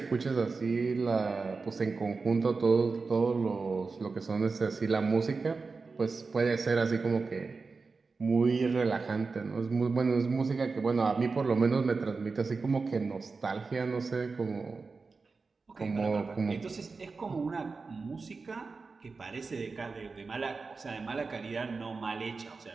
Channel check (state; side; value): quieter; left; 4.3 dB